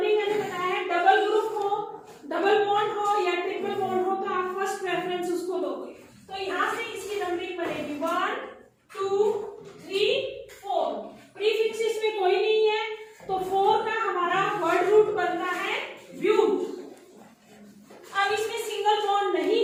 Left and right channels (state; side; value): identical; both; correlation 1.00